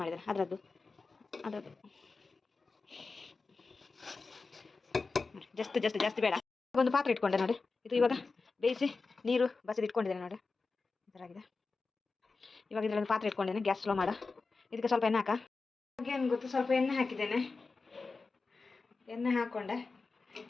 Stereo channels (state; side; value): quieter; right; 4.1 dB